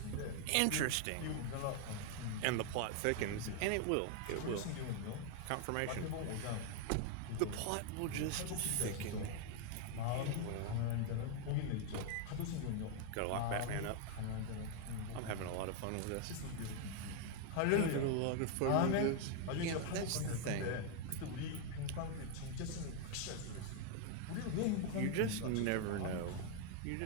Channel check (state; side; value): different; both; correlation 0.00